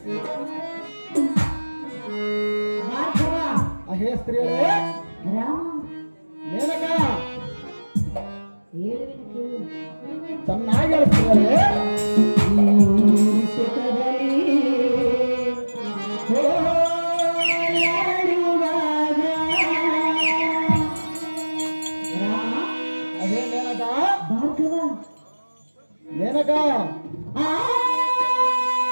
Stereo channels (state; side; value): inverted; both; correlation -1.00